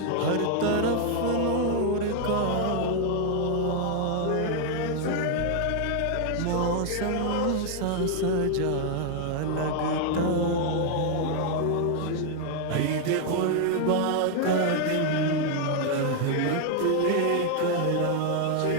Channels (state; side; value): different; both; correlation 0.00